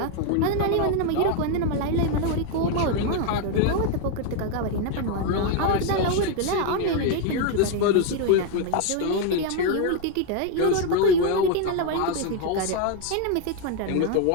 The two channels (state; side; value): different; both; correlation 0.01